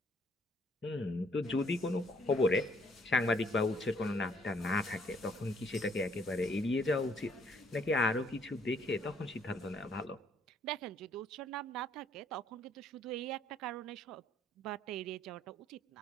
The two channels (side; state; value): both; normal; correlation 0.66